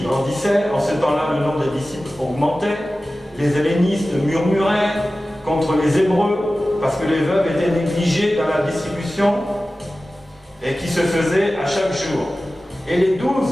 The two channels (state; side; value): normal; both; correlation 0.96